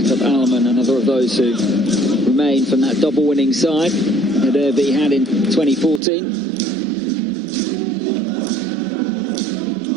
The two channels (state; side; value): drops out; left; at 6.0 s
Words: Jakob Alman, another of those who remain from that double winning side that AaB had in 2014.